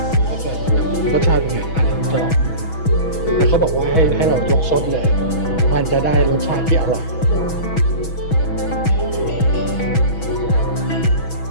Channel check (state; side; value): late; right; 6.2 ms